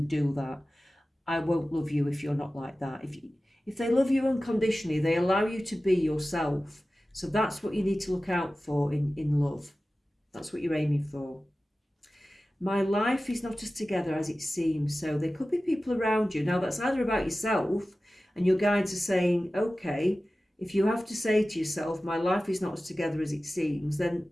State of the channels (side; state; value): both; normal; correlation 0.96